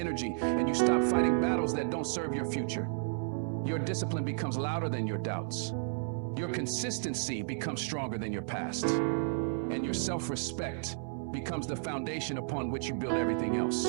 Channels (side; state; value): left; silent; 56 dB below the other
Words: and you stop fighting battles that don't serve your future. Your discipline becomes louder than your doubts. Your consistency becomes stronger than your past. And your self-respect becomes the foundation upon which you build everything else.